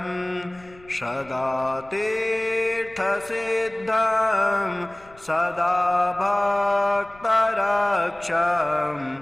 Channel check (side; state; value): left; noise; rumble, 25 dB below the sound